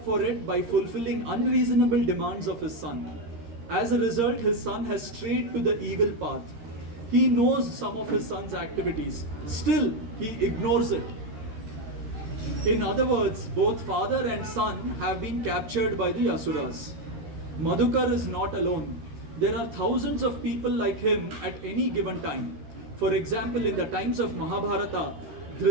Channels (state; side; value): late; left; 13 ms